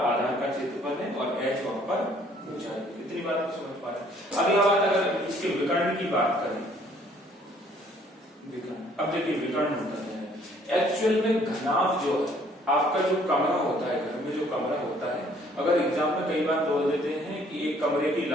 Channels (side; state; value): both; normal; correlation 0.61